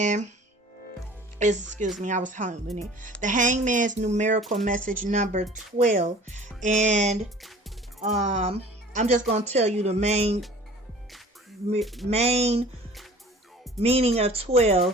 I was hungry. The Hangman's numerical message number 12. And I'm just going to tell you the main meaning of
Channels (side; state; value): both; normal; correlation 0.46